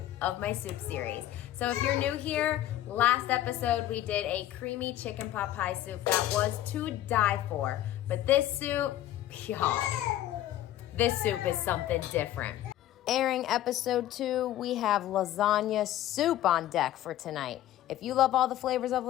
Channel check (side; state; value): right; quieter; 13.2 dB